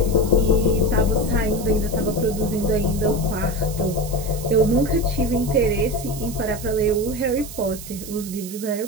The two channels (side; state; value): right; noise; hiss, 13 dB below the sound